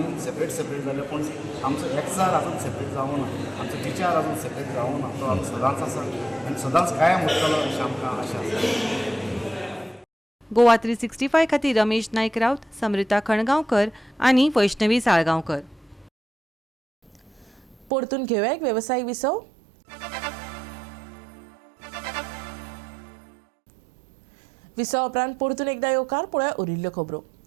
सेपरेट जाले पूण आमचो एकचार आजून सेपरेट जावूं ना, आमचो विचार आजून सेपरेट जावूं ना. तो आमी सदांच आसा आनी सदांच कायम उरतलो अशें आमकां आशा आसा. गोवा 365 खातीर रमेश नायक रावत, समृता खणगांवकर आनी वैष्णवी साळगांवकर. परतून घेवया एक वेवसायीक विसव. विसव उपरांत परतून एकदा येवकार पळोवया उरिल्ल्यो खबरो.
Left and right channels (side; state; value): left; drops out; at 17.9 s